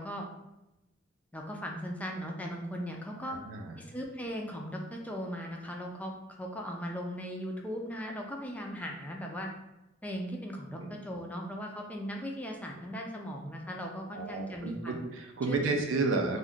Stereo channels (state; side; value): normal; both; correlation 0.46